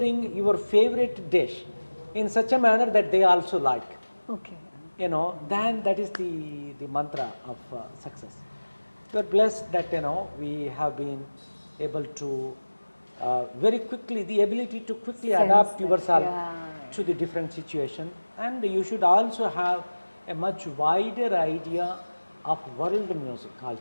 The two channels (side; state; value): both; inverted; correlation -1.00